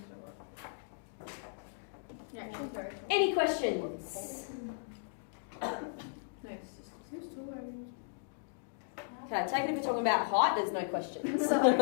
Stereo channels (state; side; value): silent; right; digital silence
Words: sure. Yeah, she's very tall. Any questions? No, it's just who's taller? Okay, take it if you're talking about height, there's no questions.